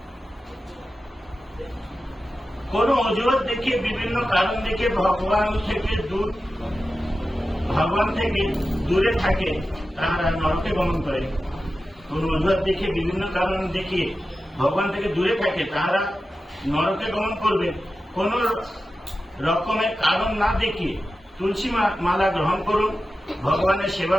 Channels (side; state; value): both; normal; correlation 0.93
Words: কোন অজুহাত দেখিয়ে, বিভিন্ন কারণ দেখে ভগবান থেকে দূরে থাকে তারা নরকে গমন করে। কোন অজুহাত দেখিয়ে, বিভিন্ন কারণ দেখিয়ে ভগবান থেকে দূরে থাকে তারা নরকে গমন করবে। কোন রকমের কারণ না দেখিয়ে তুলসী মালা গ্রহণ করুন, ভগবানের সেবা